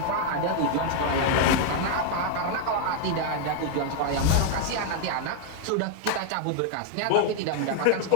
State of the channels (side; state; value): both; different; correlation 0.00